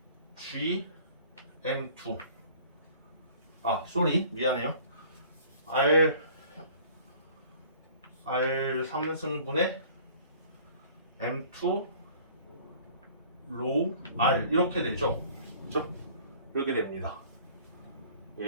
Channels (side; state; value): both; inverted; correlation -0.51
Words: G M2 미안해요. R 3승분의 M2 로우 R 이렇게 되죠. 그렇죠? 이렇게 됩니다.